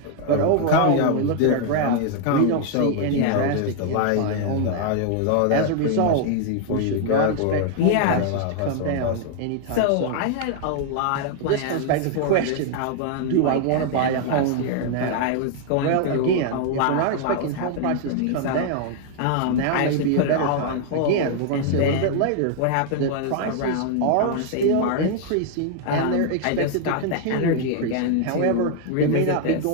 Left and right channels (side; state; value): both; different; correlation 0.00